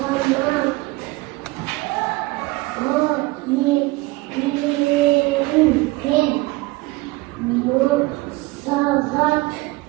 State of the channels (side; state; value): left; quieter; 21.7 dB